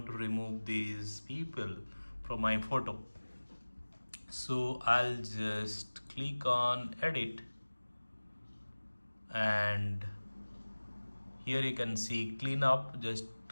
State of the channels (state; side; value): inverted; both; correlation -1.00